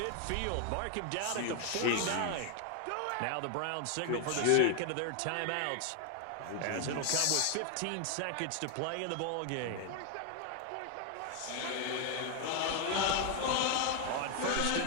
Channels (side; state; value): both; different; correlation 0.00